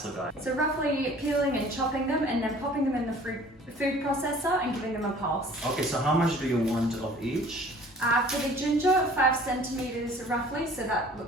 guy. So roughly peeling and chopping them and then popping them in the food processor and giving them a pulse. Okay, so how much do you want of each? For the ginger, 5 centimeters roughly, so that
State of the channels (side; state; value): both; normal; correlation 0.50